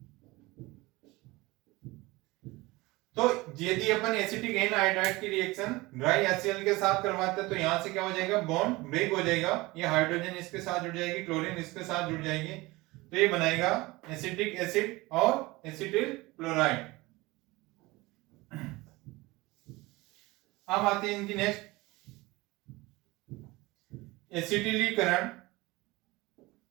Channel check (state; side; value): quieter; left; 21.5 dB